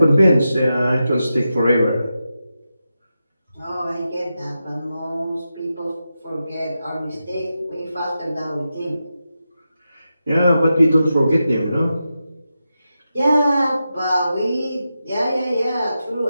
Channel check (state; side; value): inverted; both; correlation -0.90